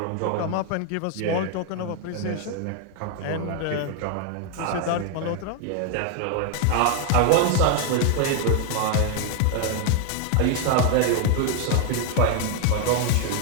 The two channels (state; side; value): different; both; correlation 0.00